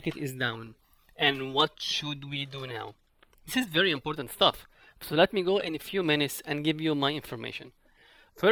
is down and what should we do now? This is very important stuff. So let me go in a few minutes and give you my information.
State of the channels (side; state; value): both; identical; correlation 1.00